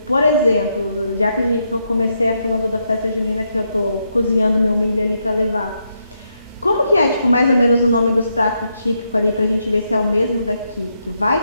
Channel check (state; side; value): inverted; both; correlation -0.80